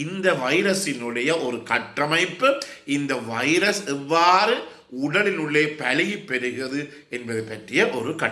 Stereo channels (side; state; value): both; identical; correlation 1.00